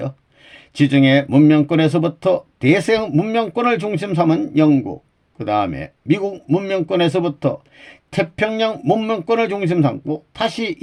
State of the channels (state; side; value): identical; both; correlation 1.00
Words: 지중해 문명권에서부터 대서양 문명권을 중심 삼은 영국, 그 다음에 미국 문명권에서부터 태평양 문명권을 중심 삼고 다시